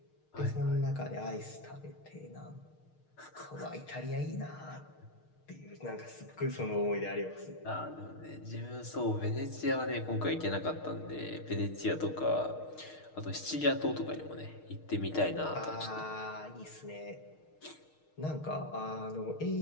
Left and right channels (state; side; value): late; right; 6.5 ms